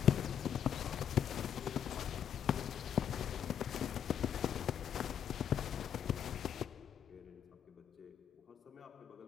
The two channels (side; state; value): right; quieter; 9.0 dB